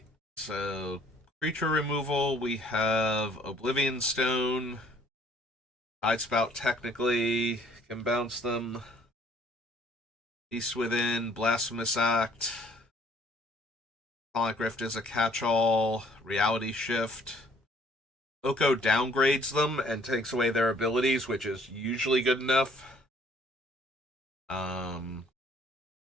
so creature removal, we have Oblivion Stone, Tidespout technically can bounce them, Beast Within, Blasphemous Act, Sonic Rift is a catch-all, Reality Shift. Oko downgrades them and takes away their abilities, which is usually good enough.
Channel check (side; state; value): both; normal; correlation 0.59